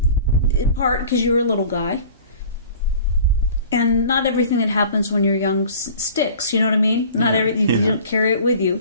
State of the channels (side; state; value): both; inverted; correlation -0.44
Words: part because you're a little guy, and not everything that happens when you're young sticks, you know what I mean? Not everything, you don't carry it with